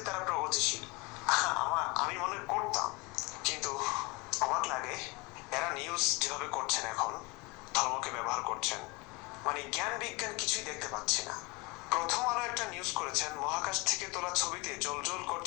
তারা প্রগতিশীল। আমি মনে করতাম, কিন্তু অবাক লাগে এরা নিউজ যেভাবে করছেন, এখন ধর্মকে ব্যবহার করছেন, মানে জ্ঞান বিজ্ঞান কিছুই দেখতে পাচ্ছি না। প্রথম আলো একটা নিউজ করেছেন, মহাকাশ থেকে তোলা ছবিতে জ্বলজ্বল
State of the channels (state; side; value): quieter; right; 25.7 dB